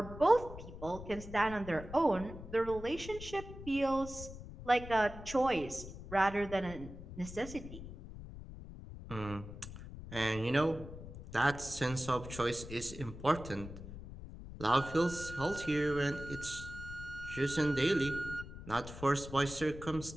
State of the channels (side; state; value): left; noise; rumble, 12 dB below the sound